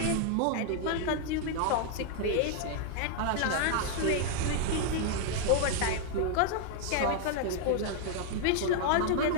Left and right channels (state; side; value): different; both; correlation 0.00